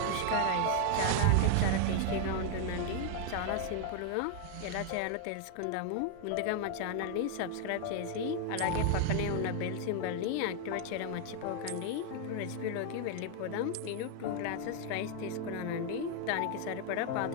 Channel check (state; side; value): different; both; correlation 0.00